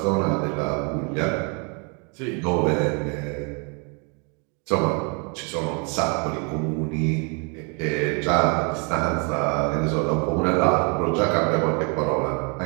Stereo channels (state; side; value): quieter; left; 35.1 dB